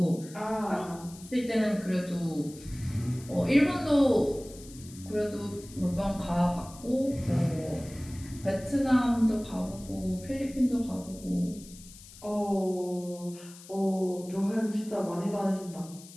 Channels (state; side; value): noise; left; hiss, 19 dB below the sound